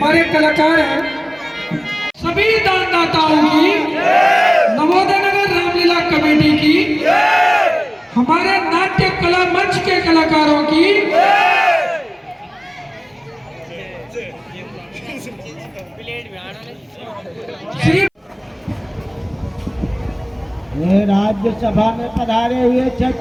कलाकार हैं, सभी दानदाताओं की, नवोदय नगर रामलीला कमेटी की, हमारे नाट्य कला मंच के कलाकारों की, श्री राज्यसभा में पधारे हुए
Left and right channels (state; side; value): identical; both; correlation 1.00